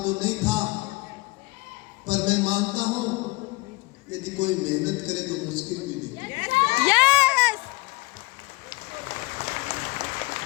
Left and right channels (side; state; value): right; quieter; 23.9 dB